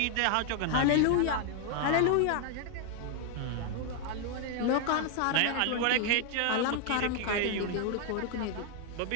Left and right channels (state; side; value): different; both; correlation 0.00